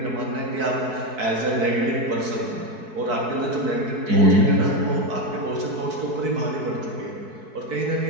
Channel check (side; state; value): left; late; 4.6 ms